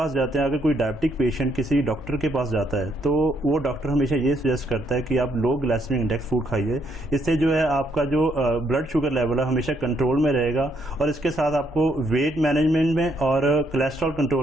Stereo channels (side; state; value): both; normal; correlation 0.73